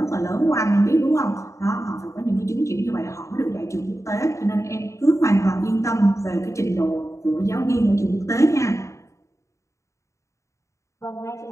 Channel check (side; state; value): right; late; 0.14 ms